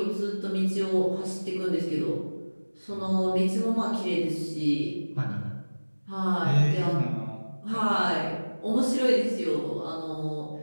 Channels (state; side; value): inverted; both; correlation -1.00